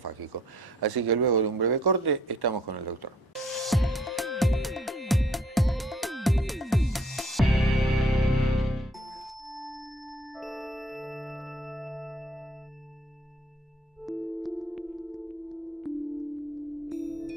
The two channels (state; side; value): normal; both; correlation 0.61